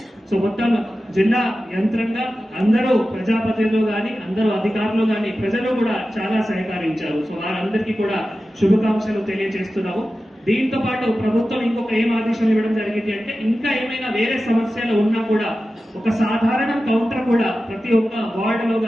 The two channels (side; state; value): both; normal; correlation 0.94